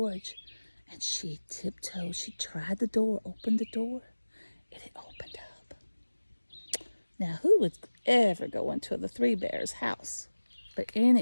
and she tiptoed. She tried the door, opened the door, and it opened up. Now, who would ever go into the 3 bears' house? But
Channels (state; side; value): inverted; both; correlation -1.00